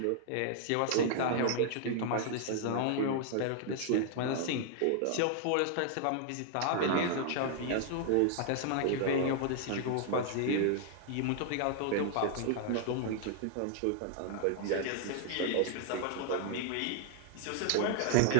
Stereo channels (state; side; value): different; both; correlation -0.01